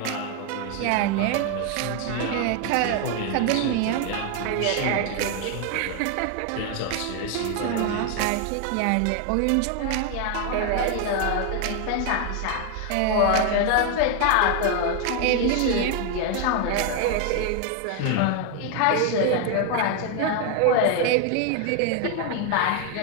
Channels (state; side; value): different; both; correlation 0.01